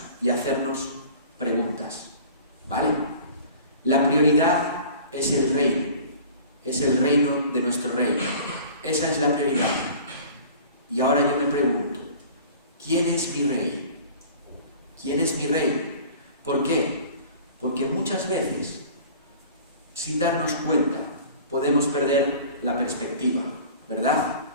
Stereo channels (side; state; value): both; inverted; correlation -0.44